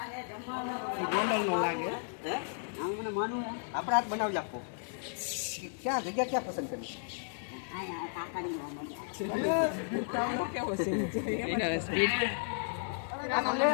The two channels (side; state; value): right; silent; digital silence